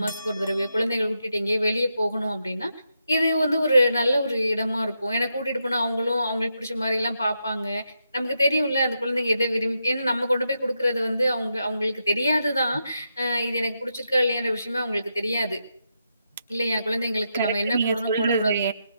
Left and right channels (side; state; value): both; inverted; correlation -0.84